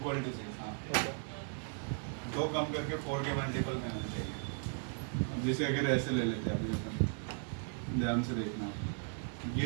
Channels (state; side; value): silent; left; 53 dB below the other